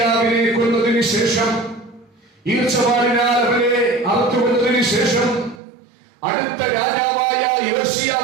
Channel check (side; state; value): left; drops out; at 5.6 s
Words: കൊന്നതിന് ശേഷം, ഈർച്ചവാളിനാൽ അവനെ അറുത്തുകൊന്നതിന് ശേഷം അടുത്ത രാജാവായ